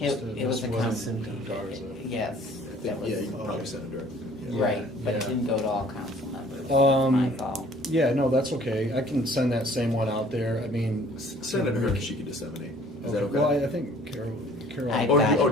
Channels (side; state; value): both; normal; correlation 0.54